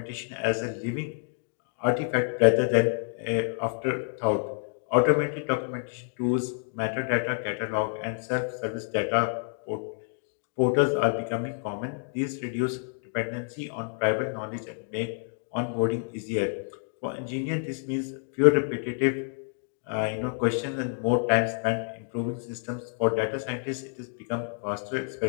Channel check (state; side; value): silent; right; 57 dB below the other